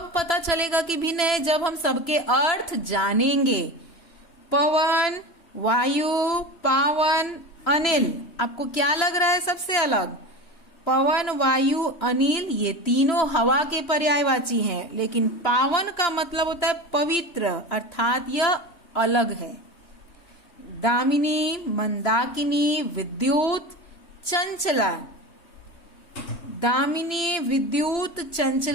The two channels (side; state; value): right; late; 3.0 ms